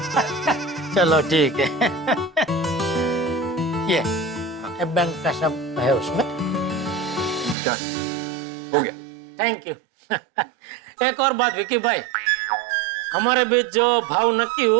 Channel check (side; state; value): left; drops out; at 7.6 s